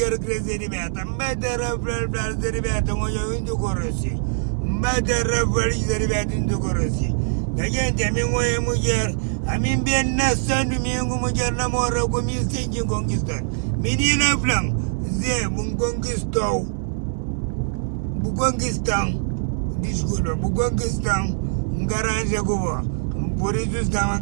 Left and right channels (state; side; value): silent; left; 64 dB below the other